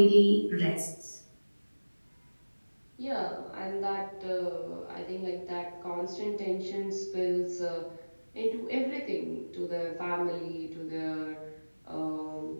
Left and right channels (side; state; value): both; inverted; correlation -1.00